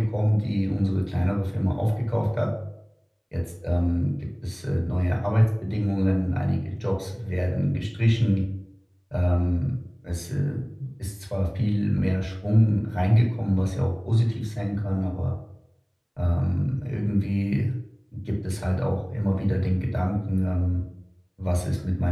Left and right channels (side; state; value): both; identical; correlation 1.00